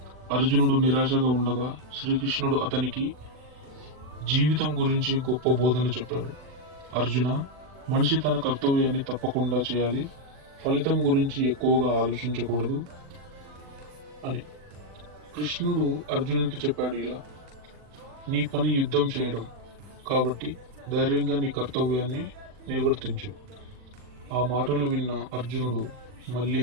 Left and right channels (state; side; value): late; left; 40 ms